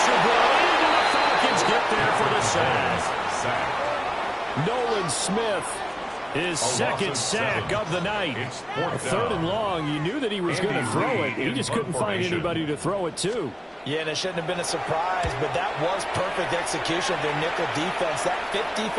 brought in, and the Falcons get there for the sack. Nolan Smith, his 2nd sack of the night. 3rd and long. You knew that he was going to throw it. He just couldn't find anybody to throw it to. Yeah, and it shouldn't have been a surprise, but that was perfect execution of their nickel defense. That 5th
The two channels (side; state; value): both; identical; correlation 1.00